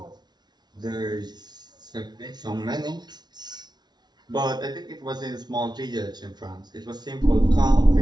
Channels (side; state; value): left; late; 0.20 ms